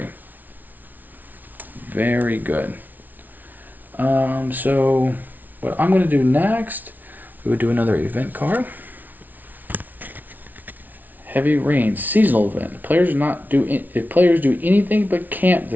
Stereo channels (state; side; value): late; left; 0.082 ms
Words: Very good. So what I'm going to do next, We would do another event card. Heavy rain, seasonal event. If players do anything but camp